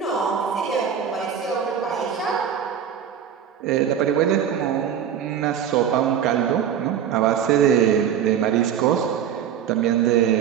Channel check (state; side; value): quieter; left; 8.7 dB